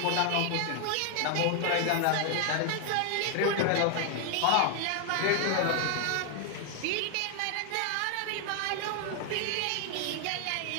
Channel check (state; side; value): different; both; correlation 0.00